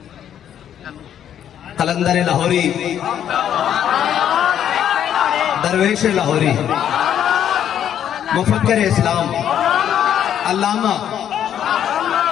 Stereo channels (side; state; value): right; quieter; 9.9 dB